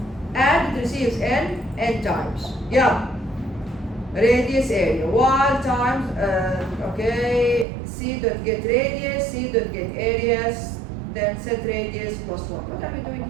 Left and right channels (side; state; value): left; drops out; at 7.7 s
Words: And it receives n times. Yeah. Radius area. While times, okay, C dot get radius, C dot get areas, then set radius plus 1. What are we doing